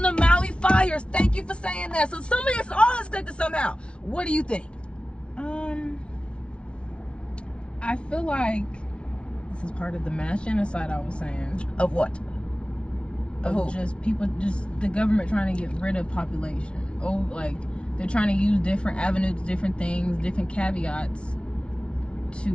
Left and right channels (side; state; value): right; late; 0.059 ms